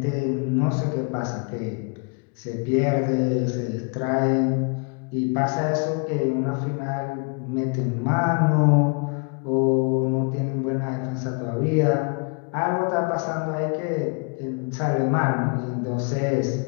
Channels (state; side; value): quieter; right; 35.5 dB